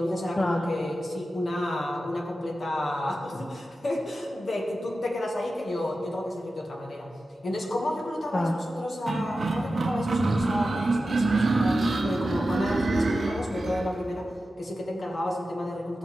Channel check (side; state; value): both; normal; correlation 0.92